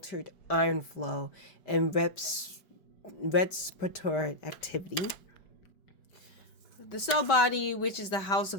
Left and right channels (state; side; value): late; right; 4.9 ms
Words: iron flow and respiratory activity. The cell body, which is the house